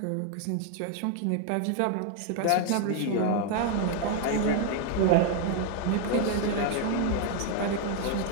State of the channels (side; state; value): both; different; correlation 0.01